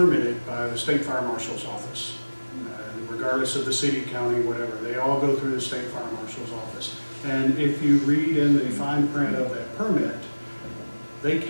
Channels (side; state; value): both; inverted; correlation -1.00